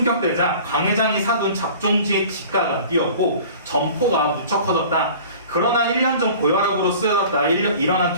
강 회장이 사둔 작종지의 지가가 뛰었고 점포가 무척 커졌다. 그러나 1년 전 고혈압으로 쓰여졌다. 일어난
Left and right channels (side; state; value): both; inverted; correlation -0.44